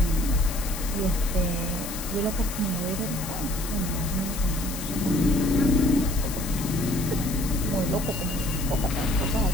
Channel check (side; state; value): left; noise; hiss, 9 dB below the sound